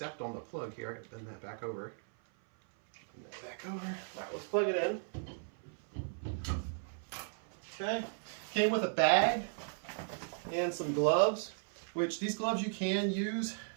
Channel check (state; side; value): silent; left; 54 dB below the other